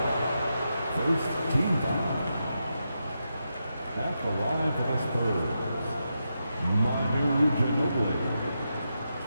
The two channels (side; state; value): both; inverted; correlation -0.86